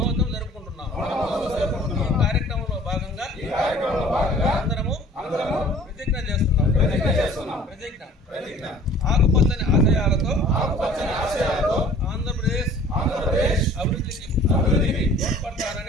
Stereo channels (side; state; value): both; normal; correlation 0.50